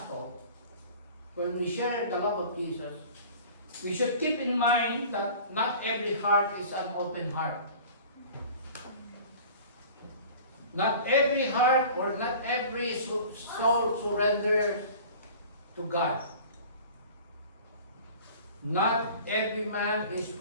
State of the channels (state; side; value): inverted; both; correlation -0.43